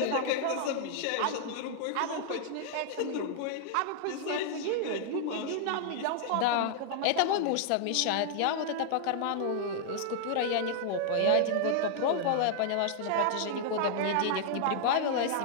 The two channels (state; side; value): different; both; correlation -0.01